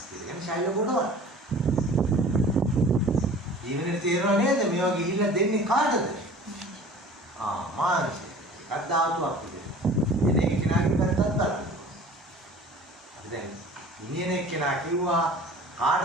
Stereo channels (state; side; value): normal; both; correlation 0.45